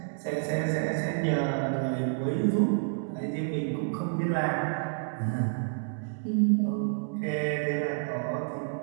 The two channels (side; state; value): left; silent; digital silence